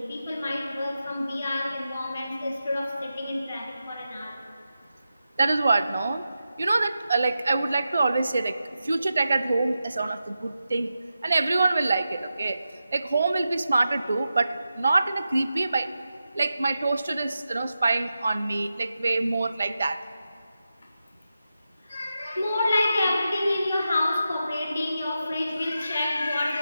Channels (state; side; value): inverted; both; correlation -0.90